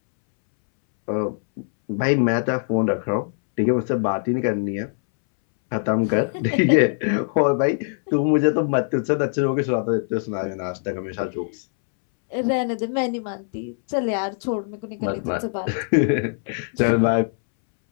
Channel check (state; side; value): silent; right; 64 dB below the other